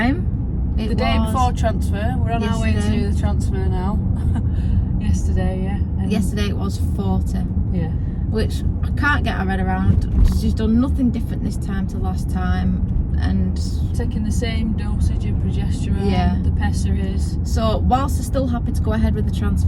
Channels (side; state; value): both; identical; correlation 1.00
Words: the day before transfer, we're on our way to do the transfer now. Yesterday, yeah. Yesterday it was 40. Yeah. Which I can't get my head around. She's done nothing different this time to last time, and taking the same dosage of progesterone, the pessaries. So whilst they're still happy to go ahead with the